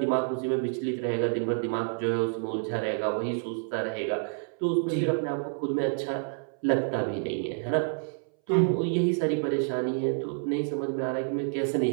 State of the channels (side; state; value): left; silent; 59 dB below the other